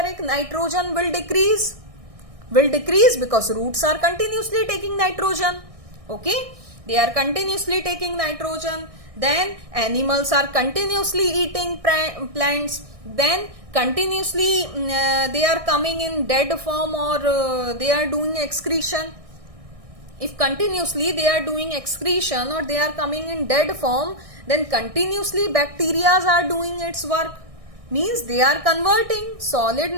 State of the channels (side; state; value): left; late; 1.6 ms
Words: nitrogen will decrease. Because roots are continuously taking nitrogen. Okay, they are continuously taking nitrogen. Then animals are continuously eating plants. Then continuously they are coming in dead form, or they are doing excretion. If continuously they are doing excretion or they are coming in dead form, then continuously bacteria are doing its work, means they are converting solid